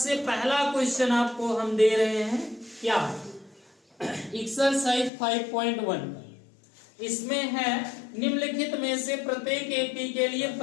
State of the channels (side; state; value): right; drops out; at 5.1 s